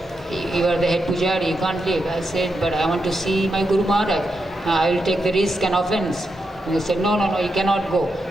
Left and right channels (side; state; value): both; normal; correlation 0.85